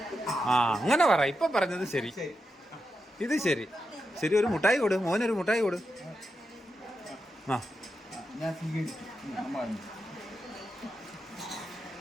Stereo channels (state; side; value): normal; both; correlation 0.87